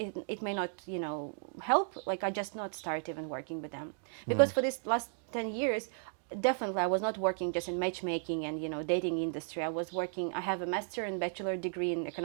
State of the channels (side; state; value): left; silent; 55 dB below the other